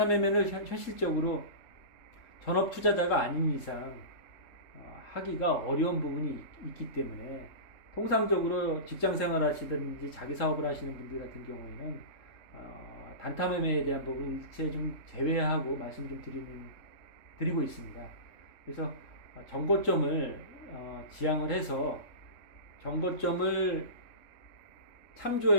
매매를 현실적으로 전업 투자자가 아닌 이상 하기가 어려운 부분이 있기 때문에 통상적으로 직장 생활 하시든지 자기 사업을 하시는 분들 같은 경우에는 단타 매매에 대한 부분 일체 좀 제외하고 말씀 좀 드리고 있습니다. 그래서 전고점을 지향을 해서 전고점을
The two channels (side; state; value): right; late; 3.7 ms